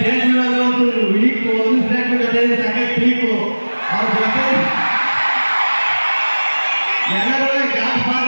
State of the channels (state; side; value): inverted; both; correlation -1.00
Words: ಮೇಲೆ ಒಂದು ವೀಕು ಒಂದು ಸ್ಟೇಜ್ ಜೊತೆ ಸಖತ್ ವೀಕು ಅವ್ರ ಜೊತೆ ಎಲ್ಲರೂ ಗಾಡ್